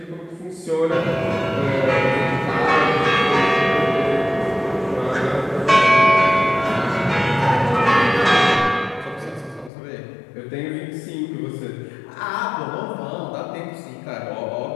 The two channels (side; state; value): right; drops out; at 9.7 s